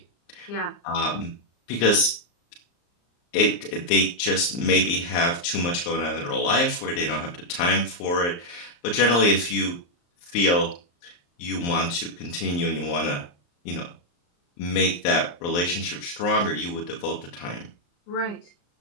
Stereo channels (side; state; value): right; late; 34 ms